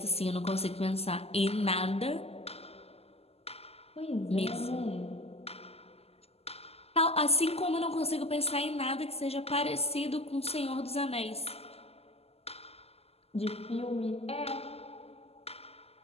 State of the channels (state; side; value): late; right; 0.29 ms